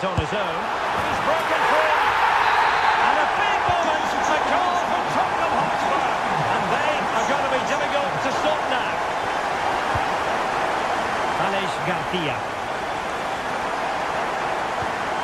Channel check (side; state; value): both; identical; correlation 1.00